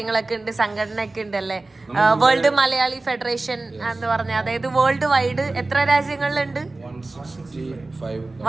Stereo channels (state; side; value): quieter; left; 3.2 dB